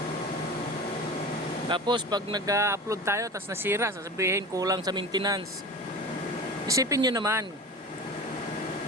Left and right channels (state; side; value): normal; both; correlation 0.33